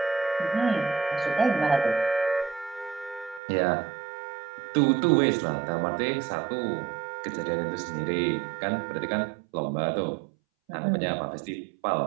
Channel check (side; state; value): left; drops out; at 3.4 s